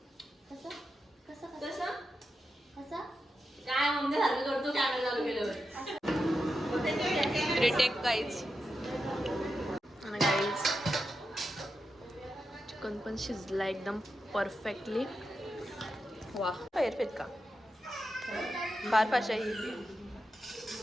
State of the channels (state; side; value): normal; both; correlation 0.88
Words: कसं कसं कसं कसं काय मम्मी सारखं करतो कॅमेरा चालू केल्यावर. Retake guys. आणि गाईज चिकन पण शिजला एकदम परफेक्टली. वा परफेक्ट का फार भाषा ही.